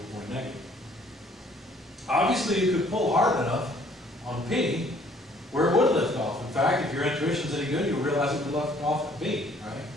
or negative. Obviously, you could pull hard enough on P where it would lift off. In fact, if your intuition's any good, you'll realize it would lift off at B, right?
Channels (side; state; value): both; normal; correlation 0.60